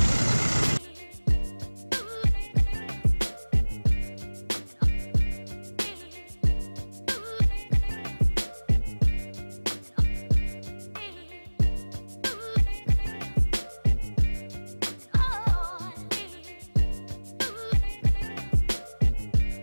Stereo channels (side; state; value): both; inverted; correlation -1.00